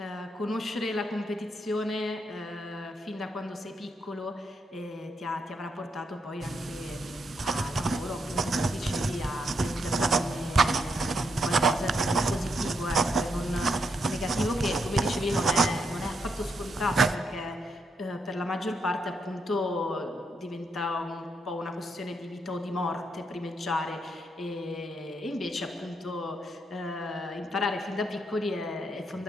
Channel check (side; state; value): both; normal; correlation 0.79